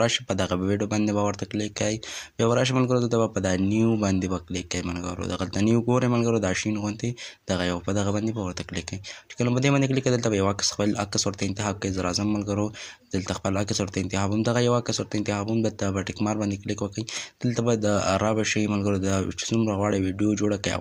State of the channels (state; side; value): identical; both; correlation 1.00